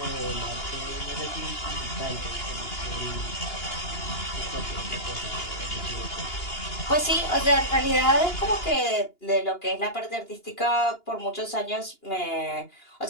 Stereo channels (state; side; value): late; right; 2.9 ms